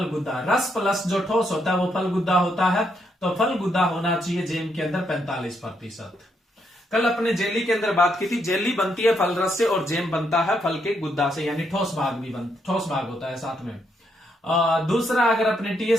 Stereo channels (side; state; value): both; normal; correlation 0.77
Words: गुद्दा, रस प्लस जो ठोस होता है वो फल गुद्दा होता है। तो फल गुद्दा होना चाहिए जैम के अंदर 45%। कल अपने जेली के अंदर बात की थी, जेली बनती है फल रस से और जैम बनता है फल के गुद्दा से, यानी ठोस भाग भी ठोस भाग होता है साथ में। दूसरा, अगर अपने